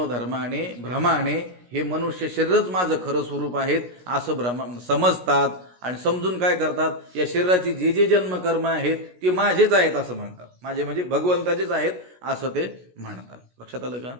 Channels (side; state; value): left; late; 16 ms